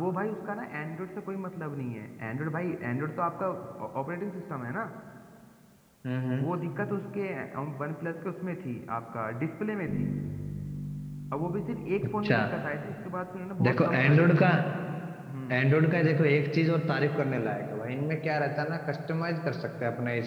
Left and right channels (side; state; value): both; identical; correlation 1.00